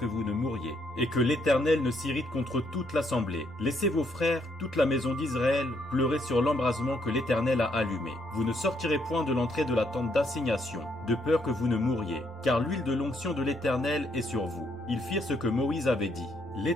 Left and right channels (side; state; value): both; normal; correlation 0.73